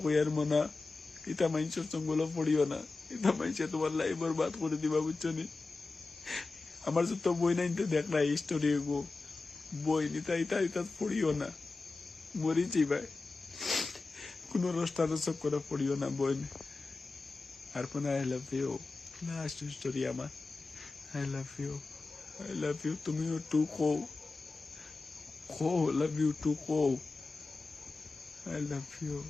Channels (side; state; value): right; quieter; 3.7 dB